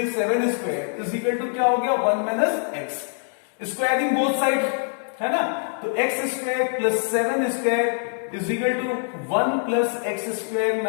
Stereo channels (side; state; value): right; silent; 55 dB below the other